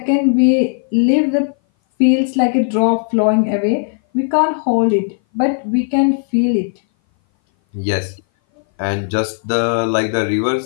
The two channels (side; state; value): right; silent; 59 dB below the other